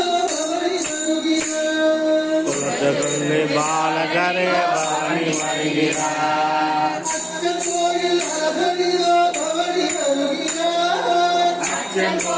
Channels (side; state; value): both; identical; correlation 1.00